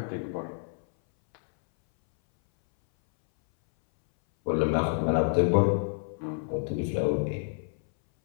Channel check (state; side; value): silent; right; 59 dB below the other